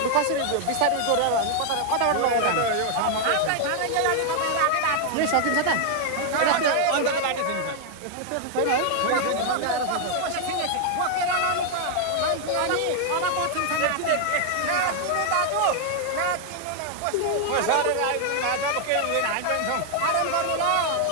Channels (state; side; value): different; both; correlation 0.00